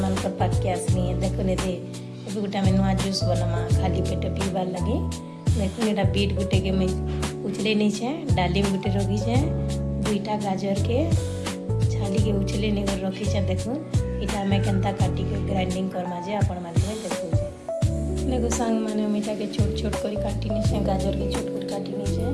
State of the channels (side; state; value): both; identical; correlation 1.00